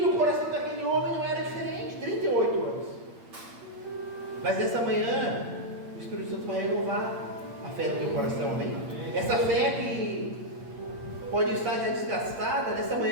coração daquele homem não era diferente, 38 anos. Mas nessa manhã, o Espírito Santo vai renovar a fé no teu coração, amém? Essa fé que pode estar já desgastada, nessa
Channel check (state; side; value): late; left; 8.7 ms